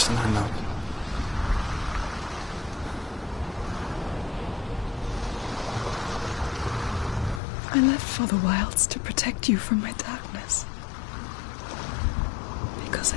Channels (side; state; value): right; drops out; at 7.4 s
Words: I love. I left for the wilds to protect you from my darkness. Because